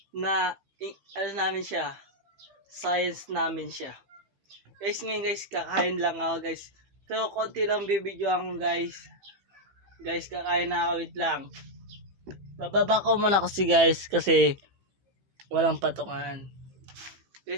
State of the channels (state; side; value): late; left; 15 ms